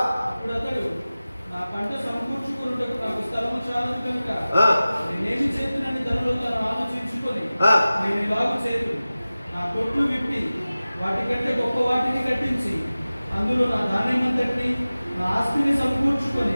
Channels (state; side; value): inverted; both; correlation -0.97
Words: అతడు, నా పంట సమకూర్చుకొనుటకు నాకు స్థలము చాలదు కనుక నేనేమి చేతునని తనలో తను ఆలోచించుకొని నేను ఇలాగు చేతును, నా కొట్లు విప్పి వాటికంటే గొప్ప వాటిని కట్టించి అందులో నా ధాన్యమంతటిని నా ఆస్తిని సమకూర్చుకొని